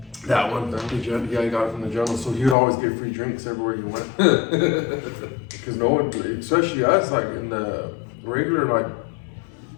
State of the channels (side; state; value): right; drops out; at 2.6 s